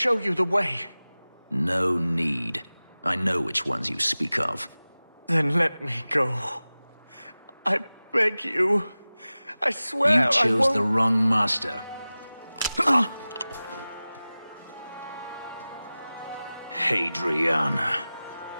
you the way. No need. I know which ones you speak of. Then let me go. I beg you. I swear You I chose won't... the wrong master. Hadriana.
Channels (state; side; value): inverted; both; correlation -0.97